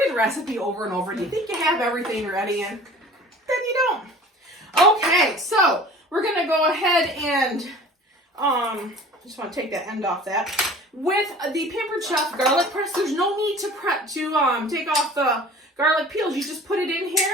the recipe over and over, and you think you have everything ready, and then you don't. Okay, so we're gonna go ahead and just want to take that end off that. With the Pampered Chef garlic press, there's no need to take off the garlic peels. You just put it in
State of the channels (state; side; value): normal; both; correlation 0.45